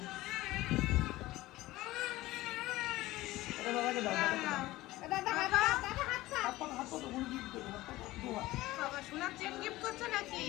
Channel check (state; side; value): quieter; right; 17.9 dB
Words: এটা দাদাকে দাও, দাদাকে দাও। দাদা হাত হাত পাতো, কোনো গিফট দেবো, হাত পাতো, দু হাত। বাবা সোনার চেন গিফট করছো নাকি?